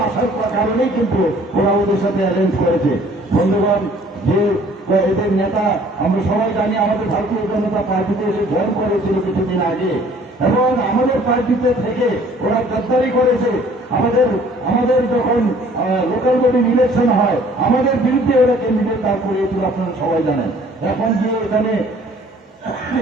আসার কারণেই কিন্তু ওরা ওদের সাথে অ্যারেঞ্জ করেছে। বন্ধুগণ, যে এদের নেতা আমরা সবাই জানি আমাদের ভারতীয় জনতা পার্টিতে এসে জয়েন করেছিল কিছুদিন আগে, এবং আমাদের পার্টিতে থেকে ওরা গদ্দারি করেছে। আমাদের যখন লোকাল বডি ইলেকশন হয় আমাদের বিরুদ্ধে ওরা ক্যান্ডিডেট দাঁড় করিয়েছিল, আপনারা সবাই জানেন। এখন গিয়ে এখানে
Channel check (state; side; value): normal; both; correlation 0.55